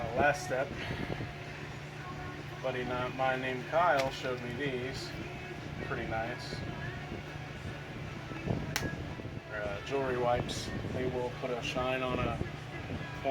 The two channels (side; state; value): both; identical; correlation 1.00